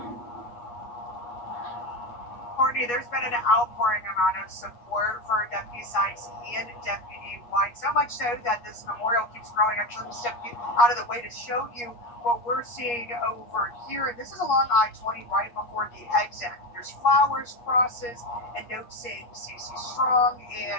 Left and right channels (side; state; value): right; late; 8.4 ms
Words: Courtney, there's been an outpouring amount of support for Deputy Sykes and Deputy White, so much so that this memorial keeps growing. Actually, let me step you out of the way to show you what we're seeing over here. This is along I-20 right before the exit. There's flowers, crosses, and notes saying CC Strong